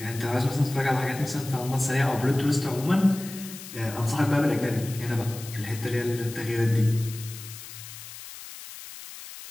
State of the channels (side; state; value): left; noise; hiss, 13 dB below the sound